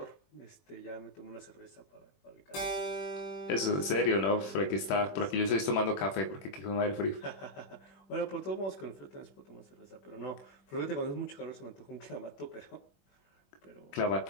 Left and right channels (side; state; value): right; late; 21 ms